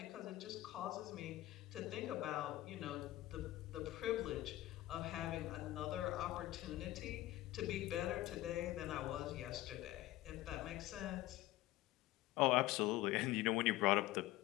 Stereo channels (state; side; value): quieter; right; 16.4 dB